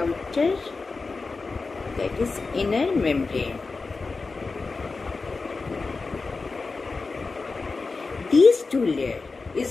that is inner membrane. These two layers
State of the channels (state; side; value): quieter; right; 4.1 dB